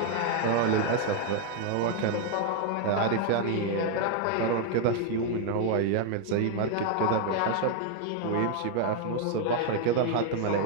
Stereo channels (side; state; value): both; different; correlation 0.00